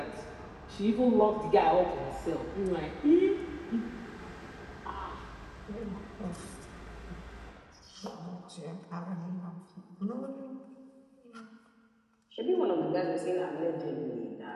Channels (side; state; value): both; identical; correlation 1.00